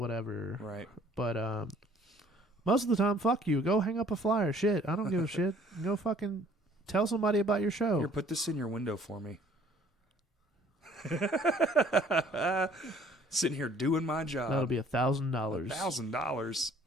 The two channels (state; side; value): normal; both; correlation 0.57